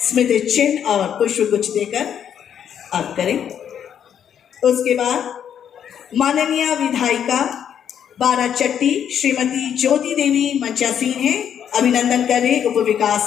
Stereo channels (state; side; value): quieter; right; 8.9 dB